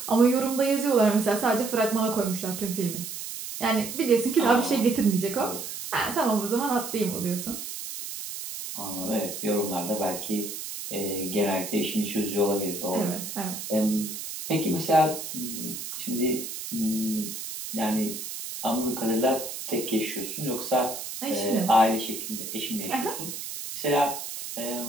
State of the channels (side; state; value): right; noise; hiss, 8 dB below the sound